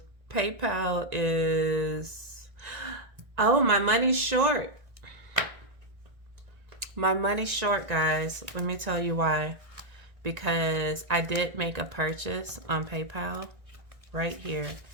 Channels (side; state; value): left; late; 1.6 ms